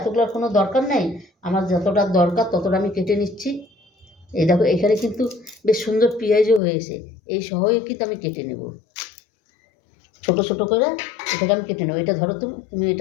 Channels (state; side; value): drops out; right; at 6.6 s